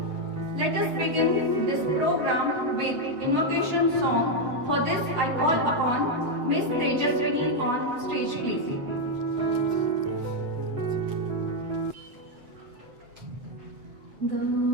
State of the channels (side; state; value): left; late; 8.0 ms